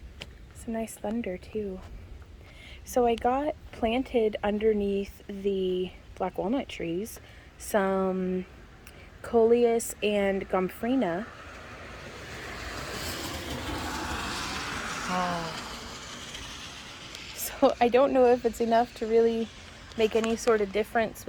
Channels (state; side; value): identical; both; correlation 1.00